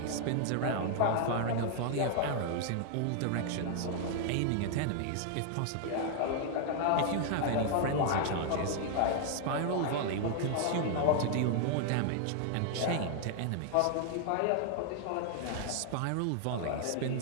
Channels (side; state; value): both; different; correlation 0.00